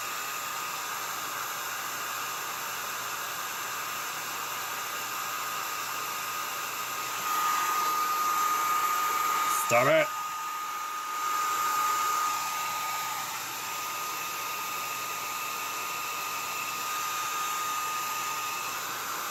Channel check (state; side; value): identical; both; correlation 1.00